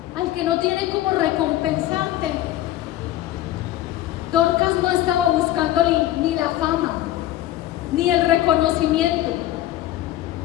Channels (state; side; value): quieter; right; 14.1 dB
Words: al que no tiene cómo recompensarte. Dorcas no estaba buscando ni la fama, ni el reconocimiento.